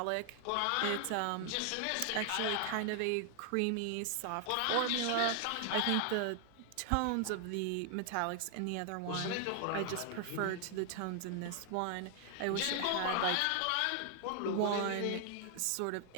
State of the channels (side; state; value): both; different; correlation 0.00